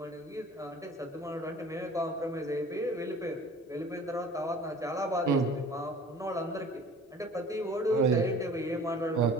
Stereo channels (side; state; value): both; normal; correlation 0.46